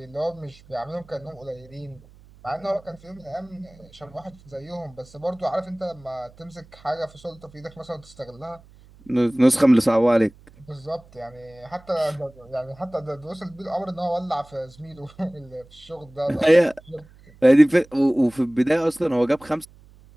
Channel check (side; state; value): right; noise; hum, 25 dB below the sound